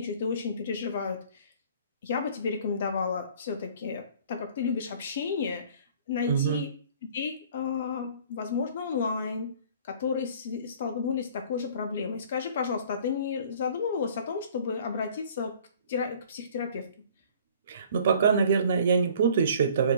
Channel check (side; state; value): both; inverted; correlation -0.51